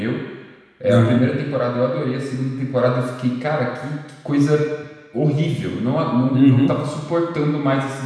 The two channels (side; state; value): both; identical; correlation 1.00